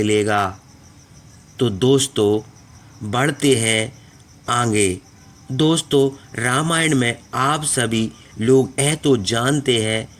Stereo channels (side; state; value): both; identical; correlation 1.00